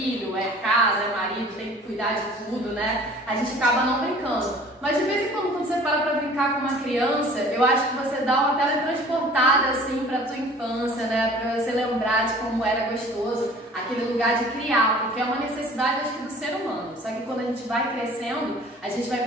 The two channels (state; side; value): normal; both; correlation 0.48